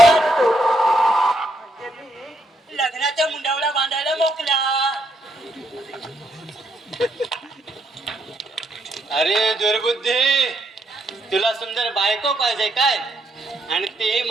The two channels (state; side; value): normal; both; correlation 0.76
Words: लग्नाच्या मुंडावला बांधायला मोकला. अरे दुर्बुद्धी, तुला सुंदर बायको पाहिजे काय, आणि ती